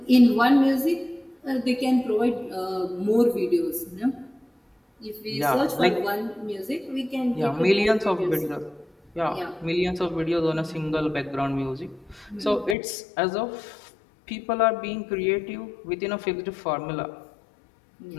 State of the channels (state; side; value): drops out; right; at 12.8 s